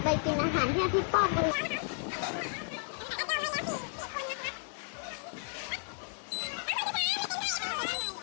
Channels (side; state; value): right; silent; digital silence